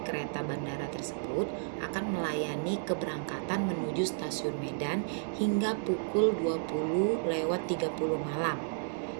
kereta bandara tersebut akan melayani keberangkatan menuju stasiun Medan hingga pukul 20.30 malam.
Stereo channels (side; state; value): left; silent; digital silence